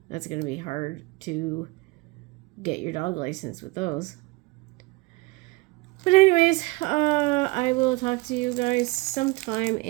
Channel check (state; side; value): quieter; left; 23.9 dB